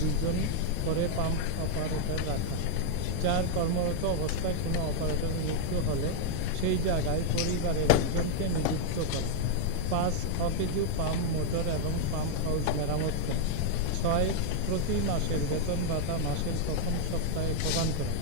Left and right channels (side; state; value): both; different; correlation -0.01